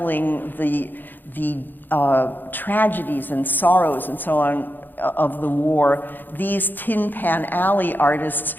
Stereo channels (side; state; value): right; late; 0.090 ms